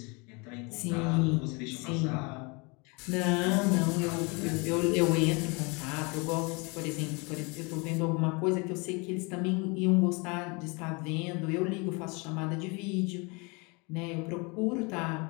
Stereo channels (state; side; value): quieter; right; 29.4 dB